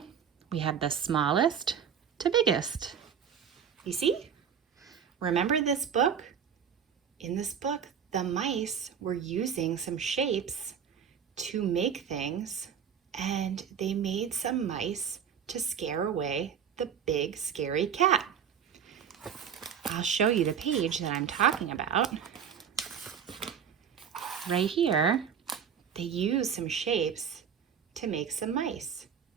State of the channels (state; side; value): quieter; left; 7.9 dB